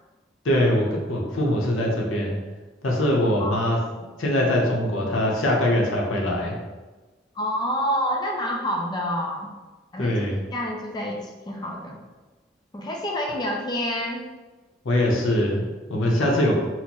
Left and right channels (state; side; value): normal; both; correlation 0.49